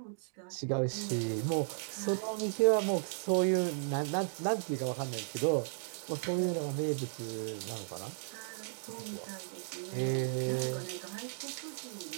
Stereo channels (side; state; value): left; silent; digital silence